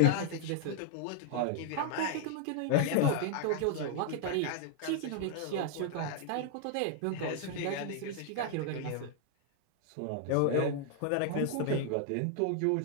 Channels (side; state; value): both; different; correlation 0.00